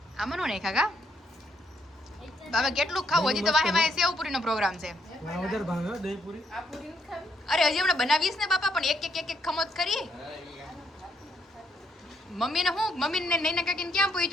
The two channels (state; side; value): normal; both; correlation 0.73